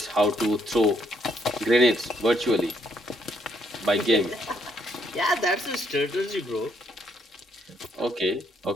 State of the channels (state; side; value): normal; both; correlation 0.72